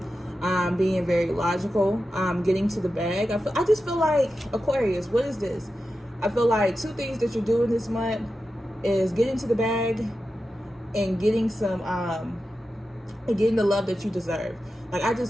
being very logical, getting to the bag. I just feel like, Aquarius, what is this? I feel like two things that you're doing this month is getting to the bag and getting some and getting the love that you deserve. Like, I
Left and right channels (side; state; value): both; normal; correlation 0.91